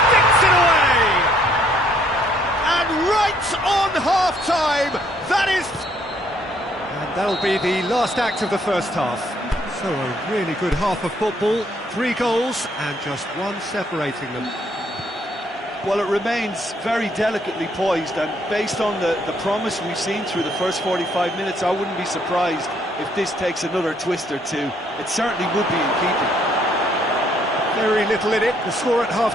it away. Right on half-time, that is... And that'll be the last act of the first half. So a really good half of football, 3 goals and just one separating them. Well, it remains very delicately poised, and based on the promise we've seen through the first 45 minutes, I wouldn't be surprised if this takes another twist or two. It certainly would be in keeping. Very little in it. The score at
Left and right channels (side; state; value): both; normal; correlation 0.67